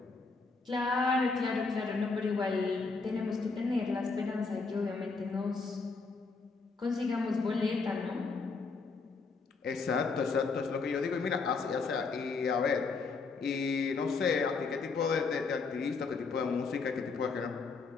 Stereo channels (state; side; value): quieter; right; 4.4 dB